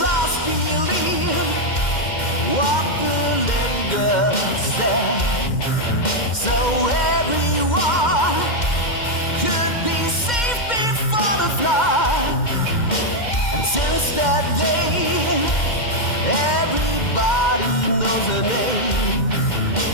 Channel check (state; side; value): late; right; 2.1 ms